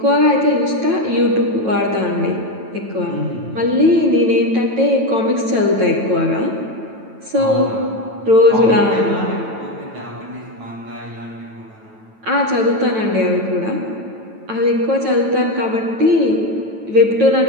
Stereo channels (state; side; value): late; left; 9.1 ms